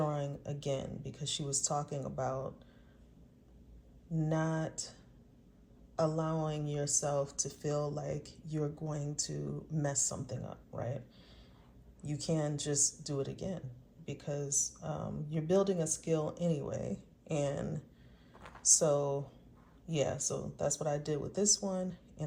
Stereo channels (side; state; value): both; identical; correlation 1.00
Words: again, because she was talking about not allowing yourself to feel like you're going to mess something up, right? You can just do it again, because you're building a skill anyway. And so, yeah, so that's what I did with this one, and